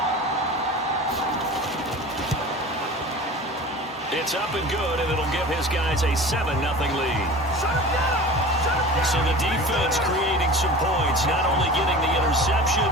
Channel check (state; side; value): normal; both; correlation 0.37